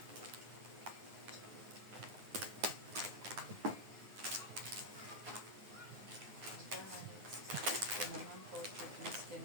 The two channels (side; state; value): left; late; 9.7 ms